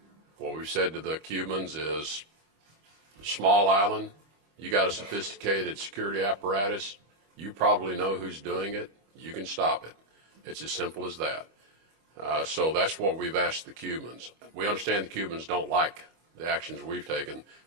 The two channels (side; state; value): left; late; 25 ms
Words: What we've said to the Cubans is, small island, you got a sophisticated security apparatus, you probably know who's doing it, you can stop it. It's as simple as that. So that's what we've asked the Cubans. We understand the Cubans don't like the actions we've taken.